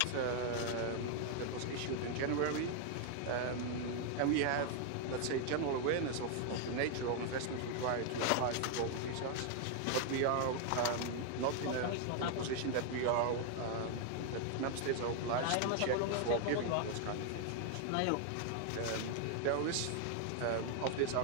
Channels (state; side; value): different; both; correlation 0.00